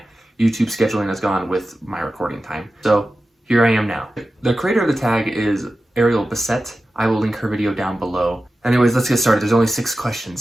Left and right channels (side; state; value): both; normal; correlation 0.93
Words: YouTube scheduling has gone with my recording time. So here I am now. The creator of the tag is Ariel Bissett. I will link her video down below. Anyways, let's get started. There's only 6